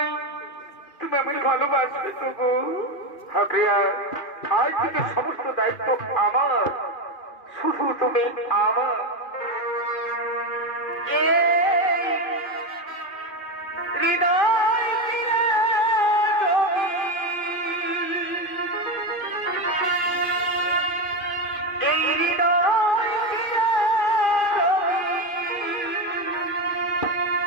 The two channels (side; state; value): right; late; 2.5 ms